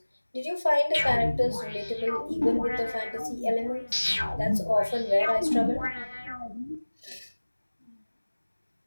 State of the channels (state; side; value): inverted; both; correlation -1.00